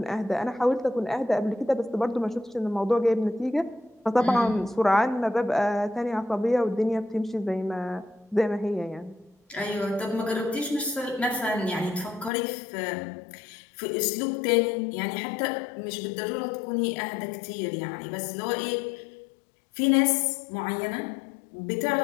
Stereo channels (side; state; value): right; drops out; at 12.3 s